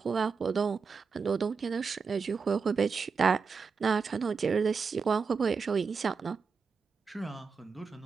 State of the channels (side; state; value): left; quieter; 5.3 dB